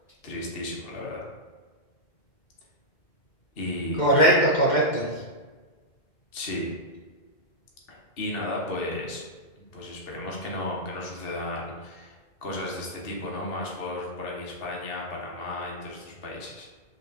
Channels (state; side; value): late; right; 2.1 ms